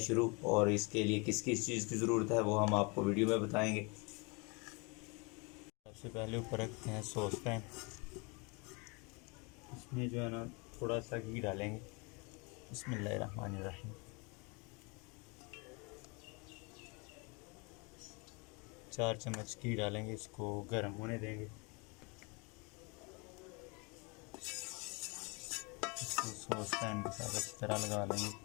और इसके लिए किस किस चीज़ की ज़रूरत है वो हम आपको वीडियो में बताएंगे। सबसे पहले ऊपर रखते हैं सॉस पैन। इसमें जो है ना थोड़ा सा घी डालेंगे। बिस्मिल्लाहिर्रहमानिर्रहीम। 4 चम्मच घी डालेंगे, इसको गर्म होने देंगे। इसको सॉस पैन के साथ अच्छी तरह लगा लेंगे,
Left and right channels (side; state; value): right; quieter; 30.5 dB